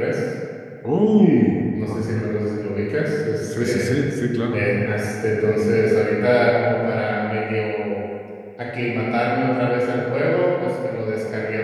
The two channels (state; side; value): identical; both; correlation 1.00